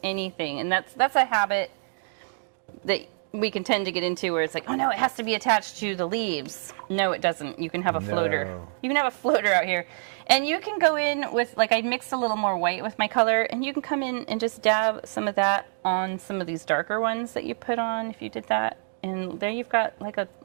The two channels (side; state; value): left; silent; digital silence